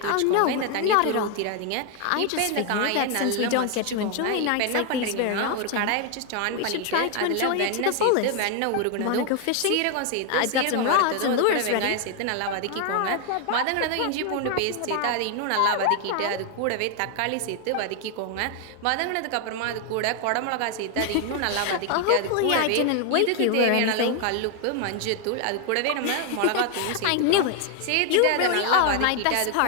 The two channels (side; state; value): both; different; correlation 0.00